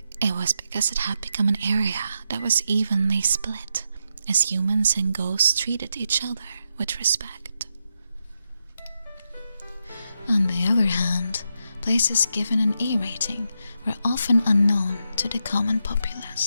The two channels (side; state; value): both; inverted; correlation -0.84